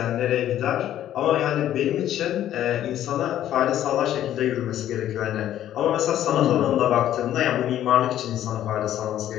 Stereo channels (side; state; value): right; quieter; 11.9 dB